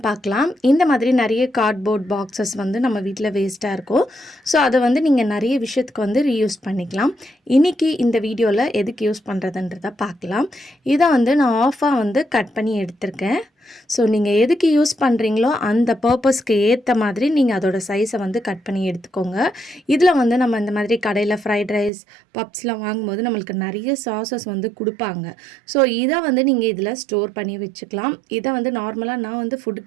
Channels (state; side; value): drops out; left; at 21.9 s